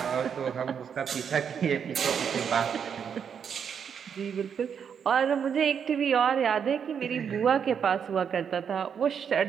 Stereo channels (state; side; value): quieter; left; 7.4 dB